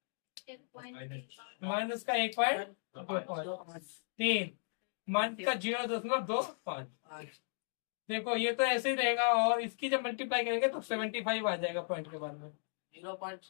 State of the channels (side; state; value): right; silent; digital silence